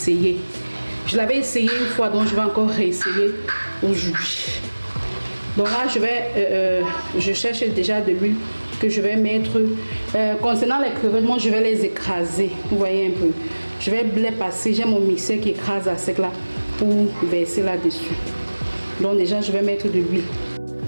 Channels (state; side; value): inverted; both; correlation -1.00